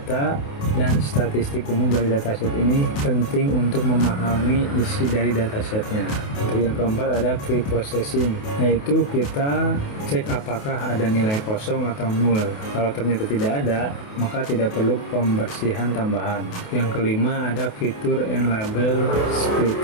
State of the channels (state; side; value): late; right; 28 ms